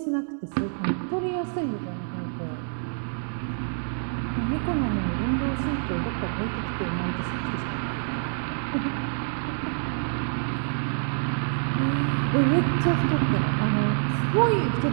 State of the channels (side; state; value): left; silent; 60 dB below the other